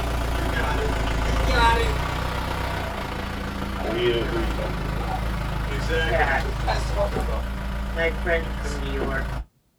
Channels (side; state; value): both; identical; correlation 1.00